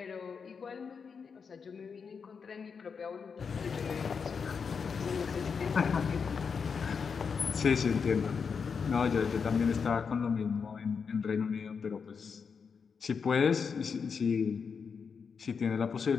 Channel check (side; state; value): right; quieter; 5.9 dB